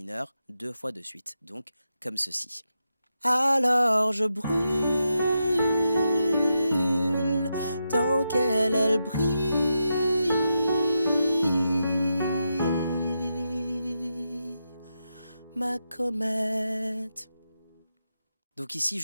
2 fois de suite, donc comme ceci. Alors je brûle tant qu'elle elle brille, ma comète. Donc ici,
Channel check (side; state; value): both; inverted; correlation -0.86